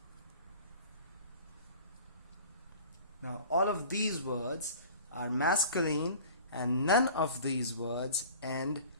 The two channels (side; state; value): both; inverted; correlation -0.44